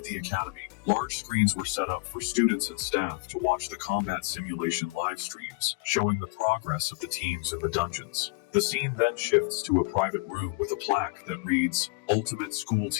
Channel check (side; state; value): right; quieter; 28.4 dB